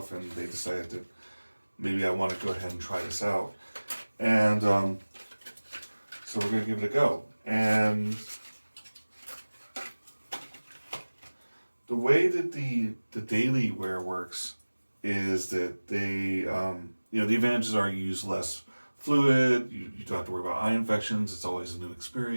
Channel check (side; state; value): both; inverted; correlation -1.00